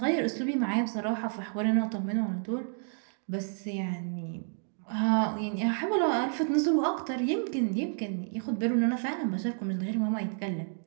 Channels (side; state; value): left; silent; digital silence